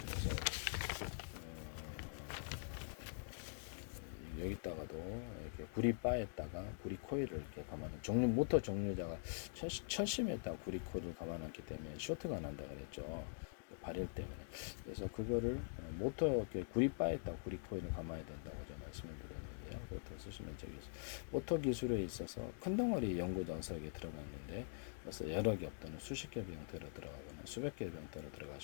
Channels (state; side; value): silent; right; digital silence